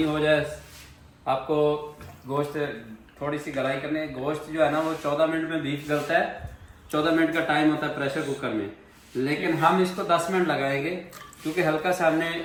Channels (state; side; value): identical; both; correlation 1.00